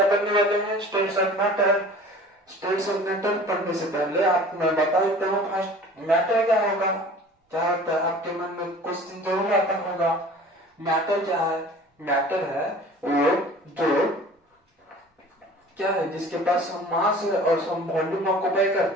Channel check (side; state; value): both; normal; correlation 0.44